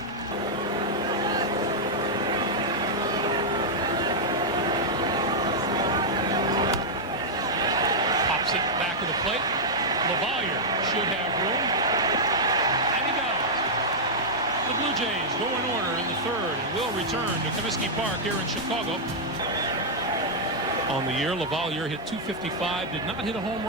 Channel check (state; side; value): normal; both; correlation -0.06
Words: Pops it back to the plate. LaValliere should have room, and he does. The Blue Jays go in order in the third and will return to Comiskey Park here in Chicago. On the year, LaValliere hit .255, did not hit a home